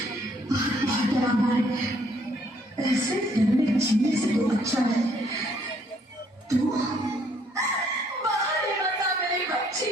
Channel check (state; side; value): normal; both; correlation 0.66